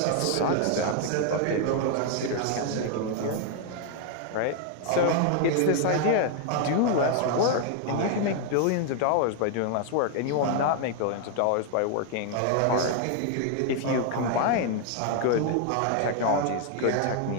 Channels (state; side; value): different; both; correlation 0.00